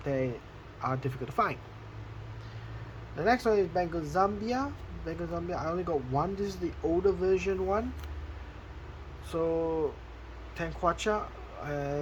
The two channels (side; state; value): both; identical; correlation 1.00